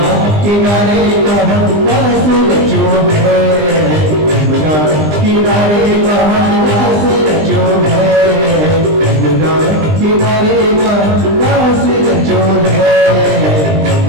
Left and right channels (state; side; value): late; left; 20 ms